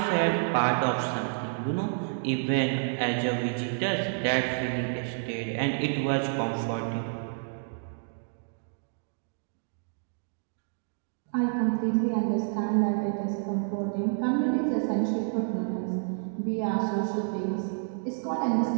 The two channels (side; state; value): left; silent; digital silence